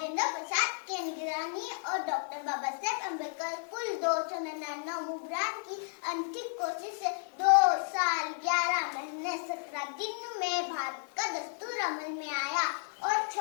प्रसाद की निगरानी और डॉक्टर बाबा साहेब अम्बेडकर कुल 299 मुबरान की अंतिम कोशिश से 2 साल 11 महीने 17 दिन में भारत का दस्तूर अमल में आया और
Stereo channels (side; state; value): right; silent; 56 dB below the other